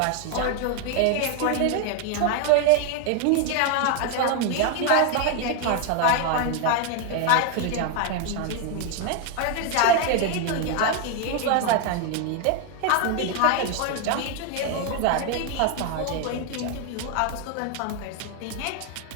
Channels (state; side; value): different; both; correlation 0.01